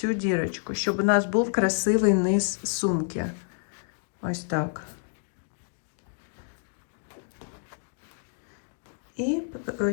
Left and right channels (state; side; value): silent; right; digital silence